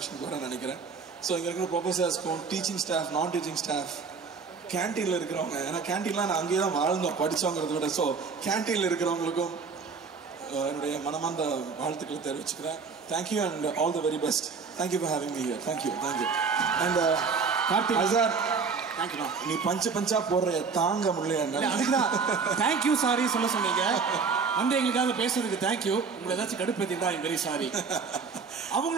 வரேன் நினைக்கிறேன். ஸோ இங்கே இருக்கிற ப்ரொஃபஸர்ஸ்க்கும் டீச்சிங் ஸ்டாஃப், நான் டீச்சிங் ஸ்டாஃப், கேன்டீனில் இருக்கிறவங்க, ஏன்னா கேன்டீன்லாம் நான் அங்கேயே தான் வாழ்ந்தோம் படித்தோங்கிறத விட. ஸோ கேன்டீனில் இருக்கிறவங்களுக்கும் என்னுடைய மனமார்ந்த வாழ்த்துக்களை தெரிவிச்சுக்கிறேன். Thank you and all the very best. Thank you for having me here. Thank you thank you. And Karthik sir, நீ பஞ்சா போடுற தாங்க முடியல. அதுக்குதான் தேங்க்யூ சாரி சொல்ல சொன்னீங்க. வந்து எங்களுக்காக பேசுறதுக்கு தேங்க்யூ. உங்களை ஏதாச்சும் கடுப்பேத்திட்டா ஐம் வெரி சாரி.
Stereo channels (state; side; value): quieter; left; 5.2 dB